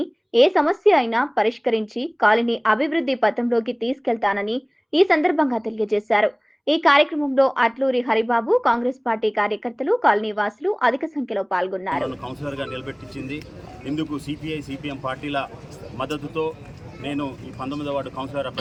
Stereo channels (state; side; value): identical; both; correlation 1.00